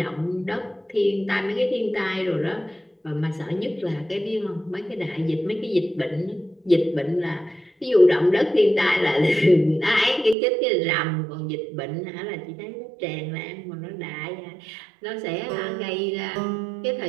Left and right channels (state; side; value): drops out; left; at 10.4 s